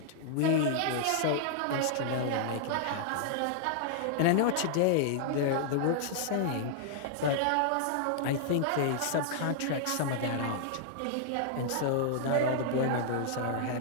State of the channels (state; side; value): different; both; correlation -0.01